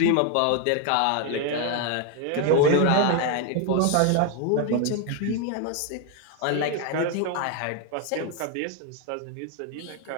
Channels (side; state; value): both; different; correlation 0.01